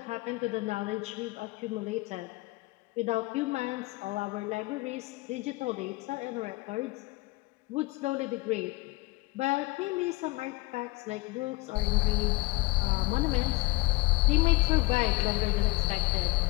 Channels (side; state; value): right; quieter; 22.9 dB